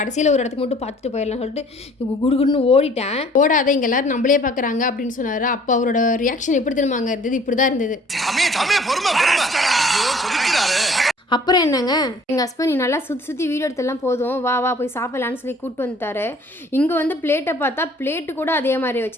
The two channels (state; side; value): normal; both; correlation 0.54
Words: ஒரு இடத்துக்கு மட்டும் பார்த்துட்டு போயிடலாம் சொல்லிட்டு குடுகுடுன்னு ஓடிட்டேன். ஓடாத, இங்கே எல்லாரும் நம்மளே பார்க்குறாங்க அப்படின்னு சொன்னார். அப்போ அவரோட ரியாக்ஷன் எப்படி தெரியுமாங்க இருந்தது? இப்படிதான் இருந்தது. அப்புறம் என்னங்க, எங்கள் ஹஸ்பண்ட் நீ நல்லா சுற்றி வீடியோ எடுத்தெல்லாம் போதும், வா போய் சாப்பிடலான்னு சொல்லி கூப்பிட்டு வந்துட்டாரு. இங்கே வந்து பிளேட்டை பார்த்தா பிளேட்டு கூட அதே மாதிரி